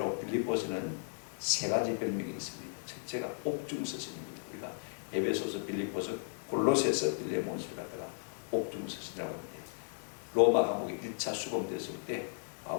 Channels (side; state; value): right; silent; 54 dB below the other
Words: 빌립보서는 세 가지 별명이 있습니다. 첫째가 옥중서신입니다. 우리가 에베소서, 빌립보서, 골로새서, 빌레몬서를 갖다가 옥중서신이라고 하는데, 로마 감옥에 1차 수감됐을 때